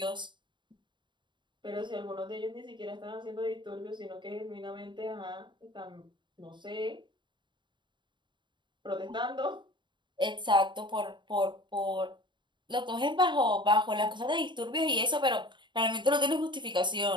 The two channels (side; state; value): left; late; 0.23 ms